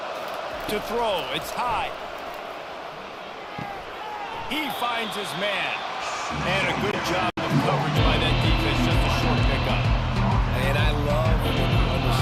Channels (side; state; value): both; identical; correlation 1.00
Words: To throw, it's high. He finds his man. And a good job of coverage by that defense, just a short pickup. And I love when you